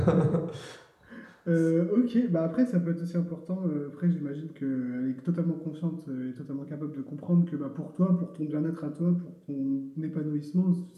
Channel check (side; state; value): both; identical; correlation 1.00